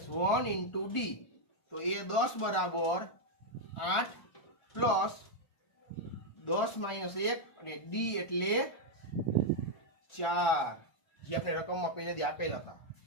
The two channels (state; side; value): late; right; 1.4 ms